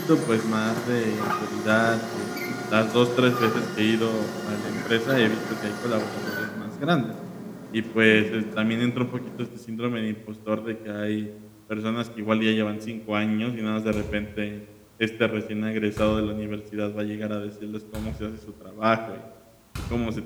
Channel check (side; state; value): both; identical; correlation 1.00